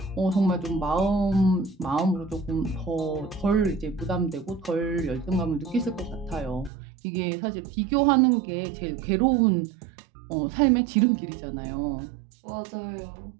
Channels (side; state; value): left; drops out; at 6.7 s